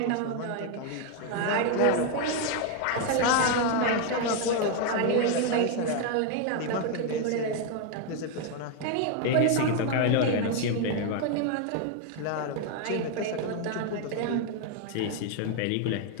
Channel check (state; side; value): different; both; correlation 0.01